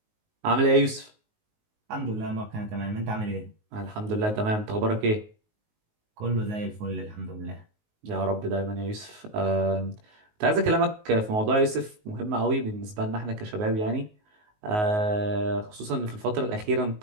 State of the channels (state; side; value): late; left; 19 ms